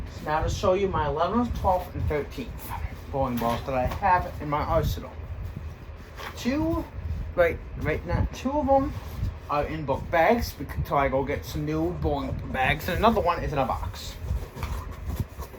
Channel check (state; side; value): identical; both; correlation 1.00